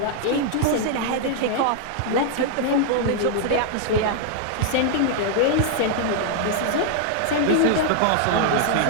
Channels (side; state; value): both; different; correlation 0.00